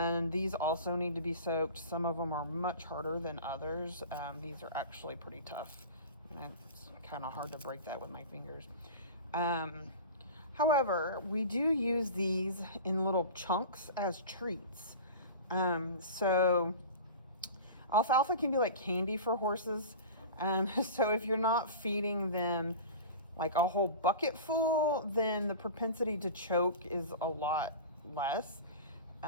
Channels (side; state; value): both; inverted; correlation -0.33